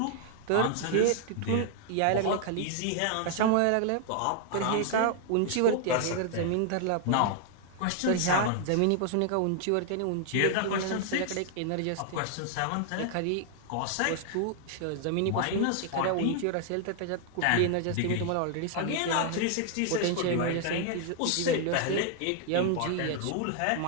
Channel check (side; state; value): both; different; correlation 0.00